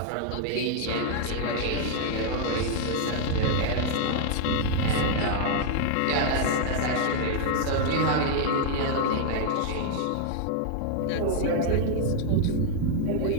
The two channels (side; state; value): both; different; correlation 0.00